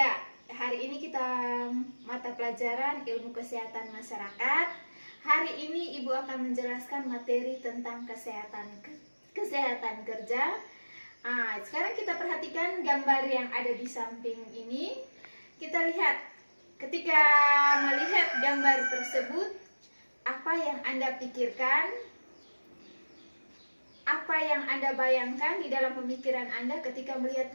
hari ini kita mata pelajaran ilmu kesehatan masyarakat. Hari ini Ibu akan menjelaskan materi tentang kesehatan kerja. Sekarang kita perhatikan gambar yang ada di samping ini. Kita lihat, ketika melihat gambar tersebut, apa yang Anda pikirkan? Apa yang Anda bayangkan di dalam pemikiran Anda ketika melihat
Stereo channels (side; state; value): both; inverted; correlation -1.00